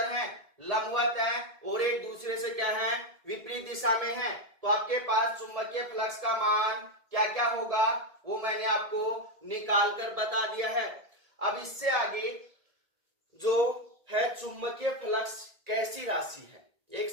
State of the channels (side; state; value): left; late; 1.7 ms